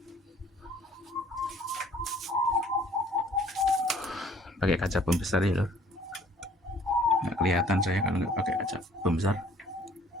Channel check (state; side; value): normal; both; correlation 0.56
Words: Pakai kaca pembesar ya lor, nggak kelihatan saya kalau nggak pakai kaca pembesar.